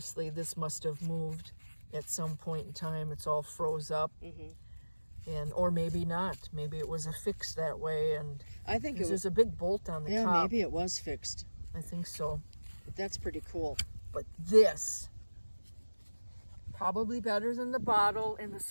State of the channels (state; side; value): inverted; both; correlation -1.00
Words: this must have moved at some point in time. It's all froze up. Or maybe not. Maybe it was affixed that way. And I think there's a big bolt on the top. Yeah, maybe it was fixed. I think so. But that's pretty cool. But this, probably better than the bottle and the